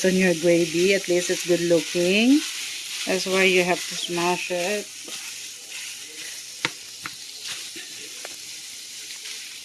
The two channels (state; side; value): identical; both; correlation 1.00